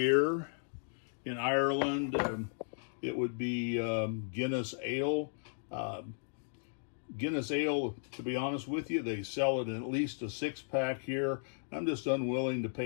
In Ireland, it would be Guinness Ale. Guinness Ale, to be honest with you, they sell it in at least a 6-pack here. I'm just unwilling to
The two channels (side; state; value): right; silent; digital silence